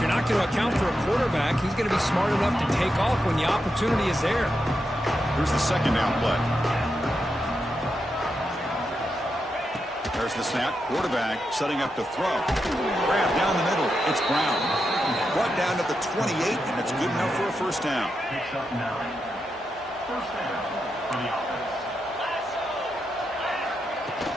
not going to account for a quarterback, he's going to be smart enough to take off when the opportunity is there. Here's the second down play. There's the snap. Quarterback setting up to throw. Grab down the middle. It's Brown. Brought down to the 28, and it's good enough for a first down. Picks up 9. First down for the offense.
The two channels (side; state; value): both; normal; correlation 0.86